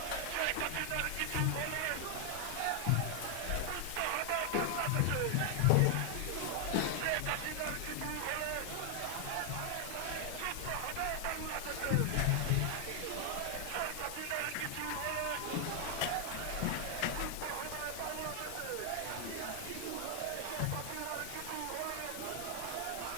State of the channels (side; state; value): both; different; correlation 0.00